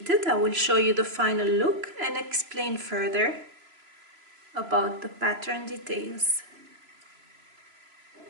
I will show you the final look and explain further about the pattern details.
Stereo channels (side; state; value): left; late; 3.0 ms